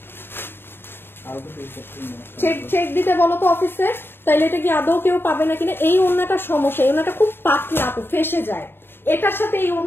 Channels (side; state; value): right; late; 0.10 ms